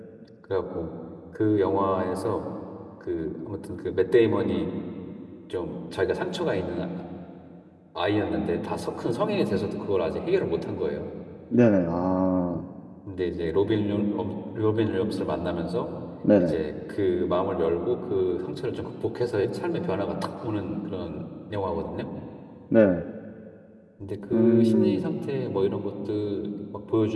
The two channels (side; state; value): both; identical; correlation 1.00